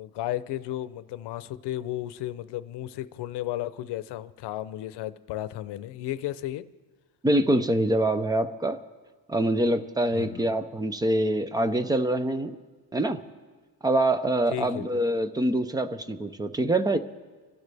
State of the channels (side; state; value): both; normal; correlation 0.64